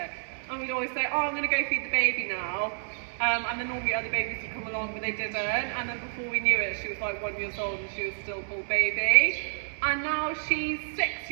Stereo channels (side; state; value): left; silent; digital silence